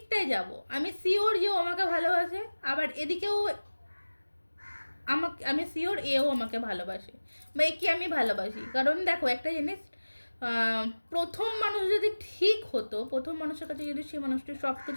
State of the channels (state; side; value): inverted; both; correlation -1.00